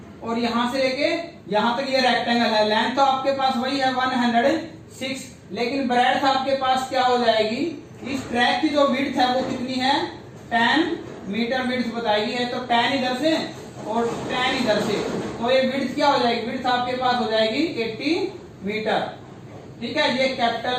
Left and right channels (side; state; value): both; identical; correlation 1.00